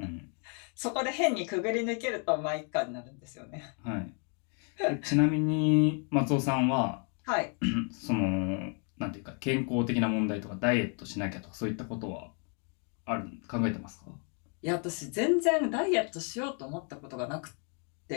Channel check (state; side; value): quieter; right; 40.0 dB